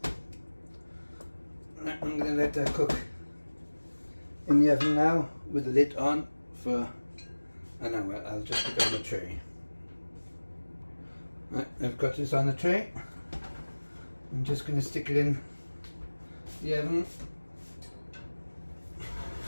I'm going to let that cook in the oven now with the lid on for an hour. I'll just put it on the tray. Right, I've got this on the tray. I'm just going to stick it in the oven.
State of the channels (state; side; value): inverted; both; correlation -1.00